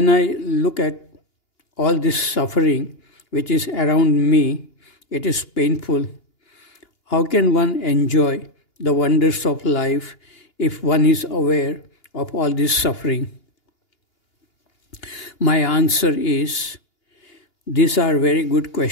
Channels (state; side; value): late; right; 2.8 ms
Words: I look at all this suffering which is around me, it is painful. How can one enjoy the wonders of life if one is aware of all this suffering? My answer is, these are very good